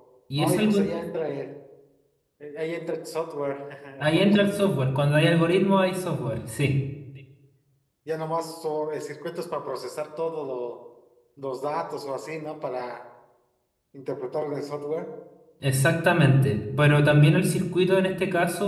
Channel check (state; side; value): identical; both; correlation 1.00